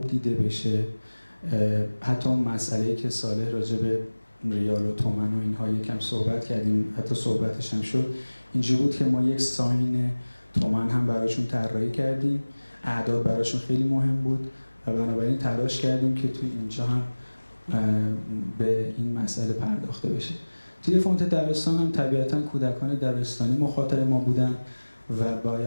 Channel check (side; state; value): both; inverted; correlation -1.00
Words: دیده بشه. حتی اون مسئله‌ای که صالح راجع به ریال و تومن و اینها یکم صحبت کردیم، حتی صحبتش هم شد، اینجوری بود که ما یک ساین تومن هم براشون طراحی کردیم. اعداد براشون خیلی مهم بود و بنابراین تلاش کردیم که توی اینجا هم به این مسئله پرداخته بشه. توی فونت دبستان هم طبیعتاً کودکان دبستانی مخاطب ما بودن و